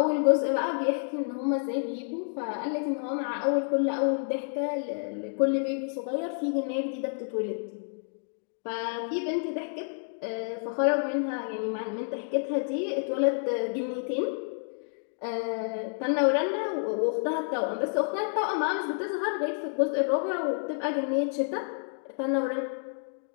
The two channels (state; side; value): silent; right; digital silence